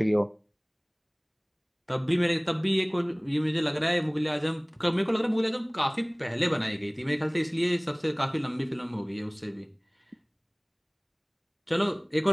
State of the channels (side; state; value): both; identical; correlation 1.00